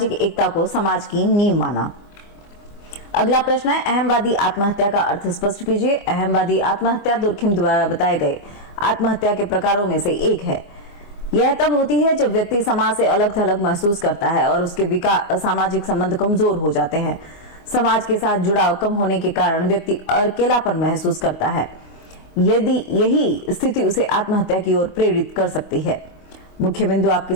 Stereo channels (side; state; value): right; late; 25 ms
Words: एकता को समाज की नींव माना। अगला प्रश्न है, अहमवादी आत्महत्या का अर्थ स्पष्ट कीजिए। अहमवादी आत्महत्या दुर्खिम द्वारा बताए गए आत्महत्या के प्रकारों में से एक है। यह तब होती है जब व्यक्ति समाज से अलग थलग महसूस करता है और उसके सामाजिक संबंध कमजोर हो जाते हैं। समाज के साथ जुड़ाव कम होने के कारण व्यक्ति अकेलापन महसूस करता है। यदि यही स्थिति उसे आत्महत्या की ओर प्रेरित कर सकती है। मुख्य बिंदु आपके